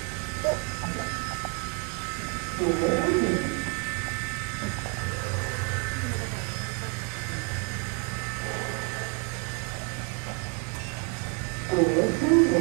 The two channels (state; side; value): quieter; left; 33.2 dB